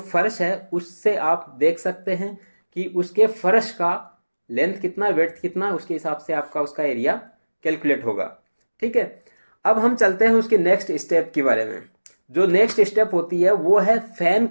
है, उससे आप देख सकते हैं कि उसके फर्श का लेंथ कितना, विड्थ कितना, उसके हिसाब से आपका उसका एरिया कैलकुलेट होगा। ठीक है, अब हम चलते हैं उसके नेक्स्ट स्टेप के बारे में। जो नेक्स्ट स्टेप होती है वो है फैन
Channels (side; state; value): both; inverted; correlation -1.00